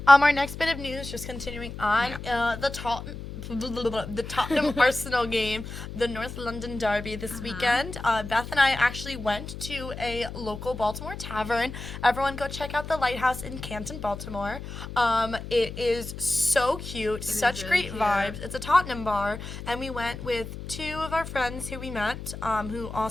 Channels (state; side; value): noise; left; hum, 10 dB below the sound